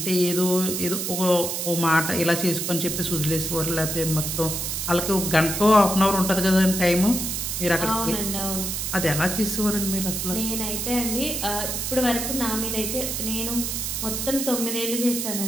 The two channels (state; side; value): noise; right; hiss, 2 dB below the sound